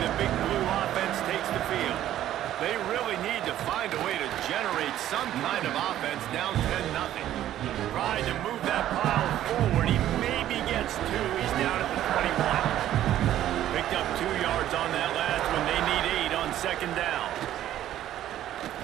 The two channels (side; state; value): left; quieter; 12.4 dB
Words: Big Blue offense takes the field. They really need to find a way to generate some kind of offense down 10-0. Tried to move that pile forward. He maybe gets 2. He's down at the 21. Picked up 2 yards on that last one. They need 8 on 2nd down.